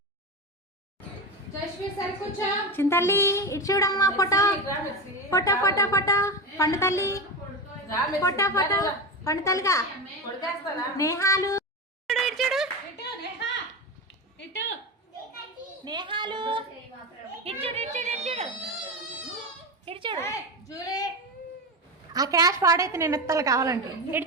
చింతల్లి ఇటు చూడమ్మా ఫోటో ఫోటో ఫోటో ఫోటో పండు తల్లి ఫోటో ఫోటో పండు తల్లిగా నేహాలు ఇటు చూడు నేహాలు ఇటు చూడు ఇటు చూడు ఇటు చూడు ఇటు చూడు ఆ క్యాష్ పాడైతే నేను ఎత్తాలి కావాలంటే ఇటు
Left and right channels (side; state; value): both; normal; correlation 0.20